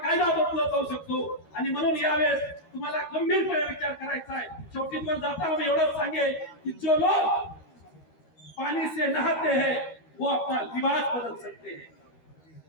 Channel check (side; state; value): right; late; 13 ms